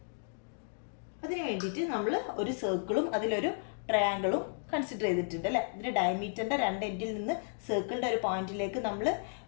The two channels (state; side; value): silent; right; digital silence